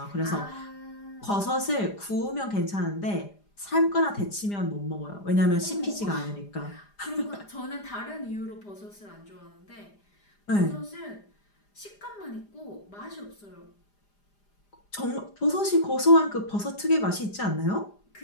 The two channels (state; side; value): late; right; 4.9 ms